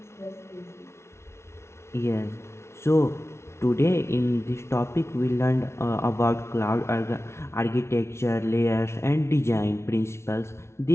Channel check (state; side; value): late; right; 0.13 ms